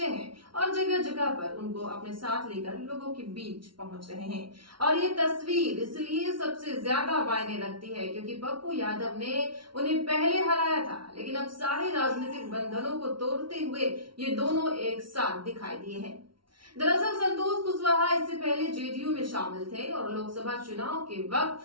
हैं और जगह जगह पर उनको अपने साथ लेकर लोगों के बीच पहुंच रहे हैं। और ये तस्वीर इसलिए सबसे ज्यादा मायने रखती है क्योंकि पप्पू यादव ने उन्हें पहले हराया था, लेकिन अब सारे राजनीतिक बंधनों को तोड़ते हुए ये दोनों एक साथ दिखाई दिए हैं। दरअसल संतोष कुशवाहा इससे पहले जेडीयू में शामिल थे और लोकसभा चुनाव के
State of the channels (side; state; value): left; late; 0.73 ms